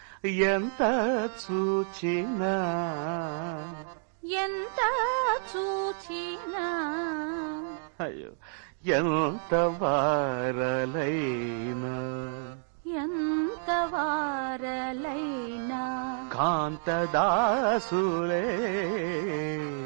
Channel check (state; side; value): silent; left; digital silence